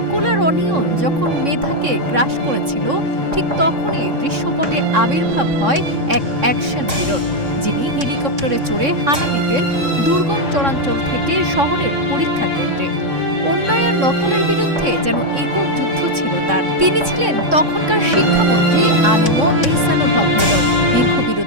আর অনিয়ম যখন মেধাকে গ্রাস করেছিল, ঠিক তখনই দৃশ্যপটে আবির্ভাব হয় এক অ্যাকশন হিরোর, যিনি হেলিকপ্টারে চড়ে হানা দিতেন দুর্গম চরাঞ্চল থেকে শহরের পরীক্ষা কেন্দ্রে। অন্যায় নকলের বিরুদ্ধে যেন একক যুদ্ধ ছিল তার। তিনি ছিলেন তখনকার শিক্ষামন্ত্রী আনম এহসানুল হক মিলন। দীর্ঘ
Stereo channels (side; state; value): left; late; 3.6 ms